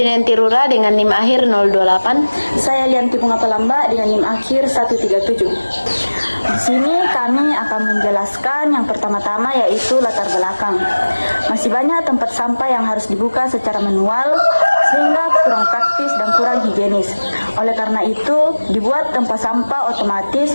Rura dengan NIM akhir 028. Saya Lianti Bunga Pelamba dengan NIM akhir 137. Di sini kami akan menjelaskan yang pertama-tama, yaitu latar belakang. Masih banyak tempat sampah yang harus dibuka secara manual sehingga kurang praktis dan kurang higienis. Oleh karena itu, dibuat tempat sampah otomatis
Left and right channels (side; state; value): both; inverted; correlation -1.00